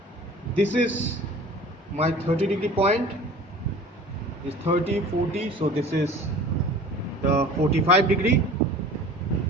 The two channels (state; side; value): normal; both; correlation 0.43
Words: This is my 30 degree point, is 30, 40, so this is the 45 degree,